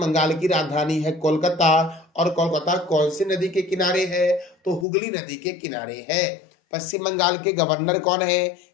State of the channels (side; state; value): right; drops out; at 4.9 s